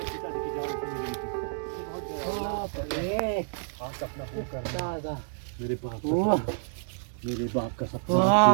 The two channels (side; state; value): left; silent; digital silence